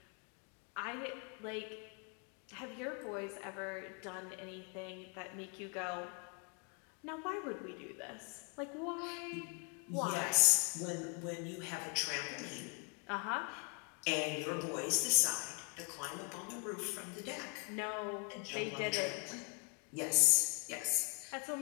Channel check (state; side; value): quieter; right; 36.4 dB